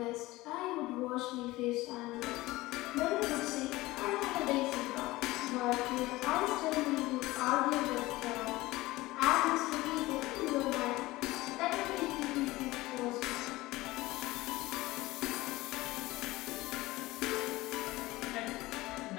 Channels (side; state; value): right; quieter; 19.2 dB